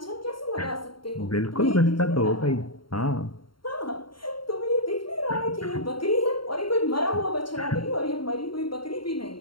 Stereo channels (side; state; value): right; late; 0.73 ms